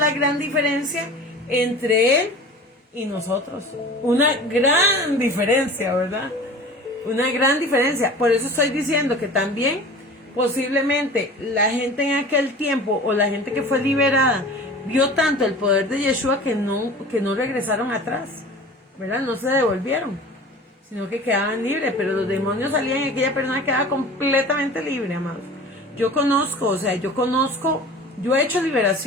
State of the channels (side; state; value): both; normal; correlation 0.39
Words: gran diferencia entre Él y nosotros. Una gran diferencia, ¿verdad? Una gran diferencia. Por eso estoy diciendo que también posiblemente la gente en aquel tiempo o la gente que fue liberada vio tanto el poder de Yeshua que no regresaron atrás, ¿verdad? No se devolvieron, sino que quedaban libres. Pero los demonios salían y aquella persona quedaba completamente libre, amados. Yo he hecho